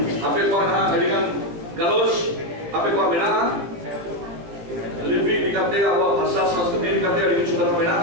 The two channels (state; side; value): late; left; 17 ms